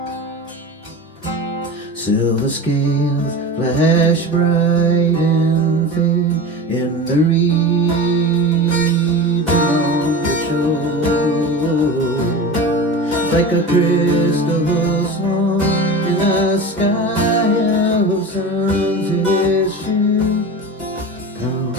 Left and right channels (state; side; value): normal; both; correlation 0.30